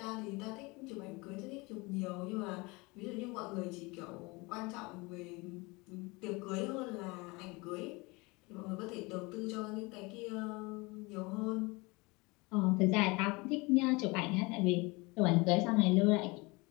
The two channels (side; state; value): right; quieter; 25.5 dB